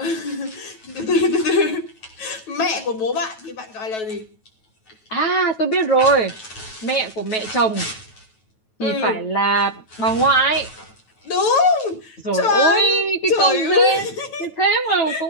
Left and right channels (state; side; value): late; right; 9.2 ms